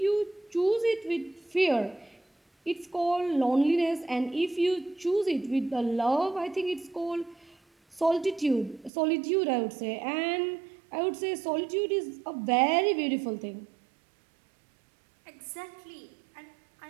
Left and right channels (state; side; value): drops out; left; at 8.9 s